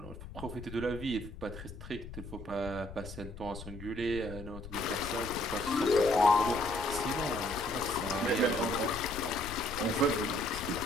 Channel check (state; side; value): noise; left; rumble, 12 dB below the sound